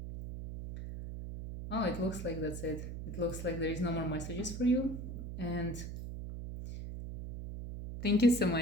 Oh, it looks like that's it. It looks like there is no more messages for you. And thank you so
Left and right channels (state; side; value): noise; right; hum, 6 dB below the sound